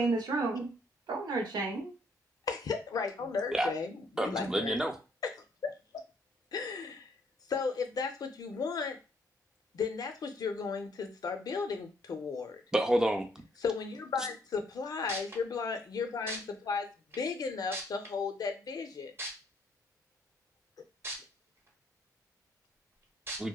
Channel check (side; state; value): both; normal; correlation 0.67